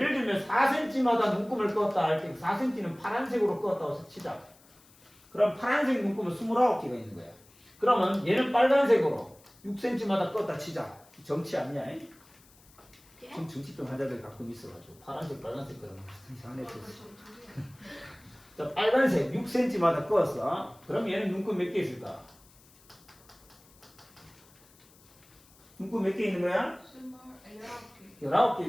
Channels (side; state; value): left; noise; hiss, 27 dB below the sound